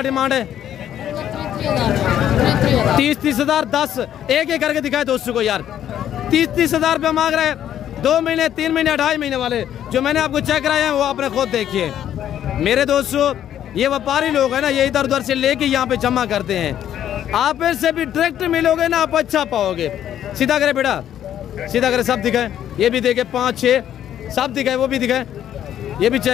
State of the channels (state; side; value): quieter; right; 10.7 dB